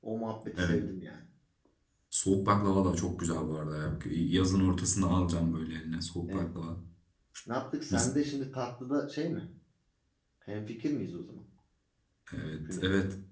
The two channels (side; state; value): both; identical; correlation 1.00